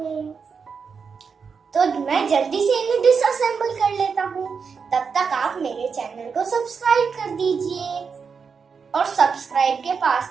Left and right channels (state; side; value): quieter; left; 5.8 dB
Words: तो मैं जल्दी से इन्हें डिसअसेंबल कर लेता हूँ। तब तक आप मेरे चैनल को सब्सक्राइब कर दीजिए और सब्सक्राइब के